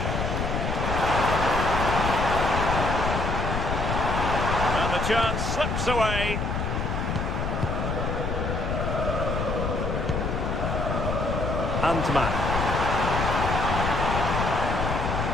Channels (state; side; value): noise; left; rumble, 1 dB below the sound